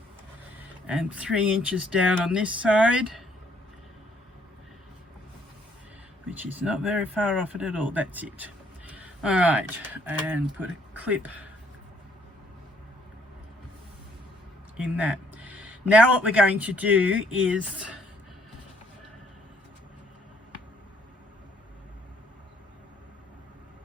and 3 inches down on this side, which is not very far off it at all. That's it. All right, and put a clip in that. Now what we're going to do is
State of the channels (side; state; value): both; normal; correlation 0.66